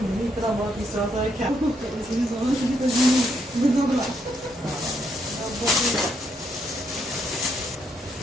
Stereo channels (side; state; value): both; normal; correlation 0.75